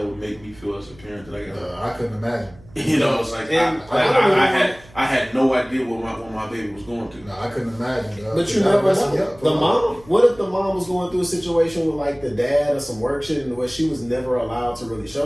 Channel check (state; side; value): noise; right; hum, 24 dB below the sound